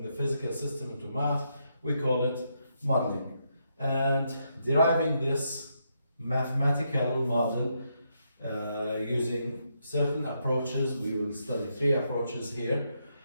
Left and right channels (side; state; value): both; inverted; correlation -0.79